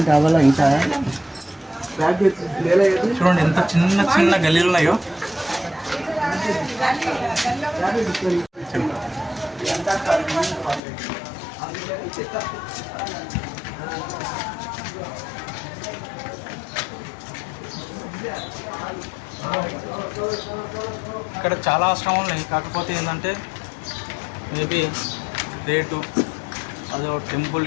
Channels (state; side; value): drops out; right; at 10.8 s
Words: అవ్వాలా ఇంకా చూడండి ఎంత చిన్న గల్లీలు ఉన్నాయో. ఇక్కడ చాలా ఆశ్రమాలు ఉన్నాయి. కాకపోతే ఏంటంటే మేబీ రేటు అదో